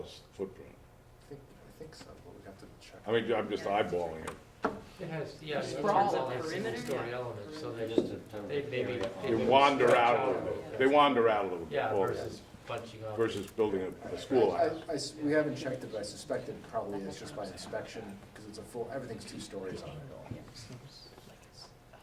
footprint. I think so, but we have to check. I'm just eyeballing it. It has, Sprawl. single-story elements, so They wander out a little bit. They wander out a little bit. Yeah, versus bunching up. Versus building a schoolhouse. We haven't checked it, but I suspect it probably is just by inspection, because it's everything's 2 stories on it all.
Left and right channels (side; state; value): both; identical; correlation 1.00